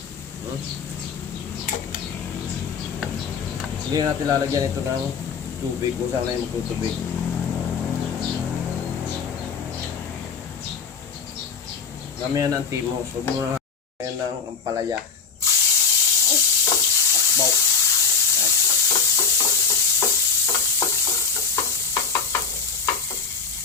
Hindi natin lalagyan ito ng tubig kung saan na yung magtutubig. Gamihan ng timos. Huwag mo na ng ampalaya. Akbaw.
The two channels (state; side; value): quieter; right; 5.4 dB